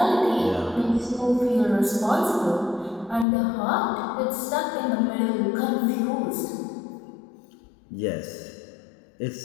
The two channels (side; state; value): right; drops out; at 3.2 s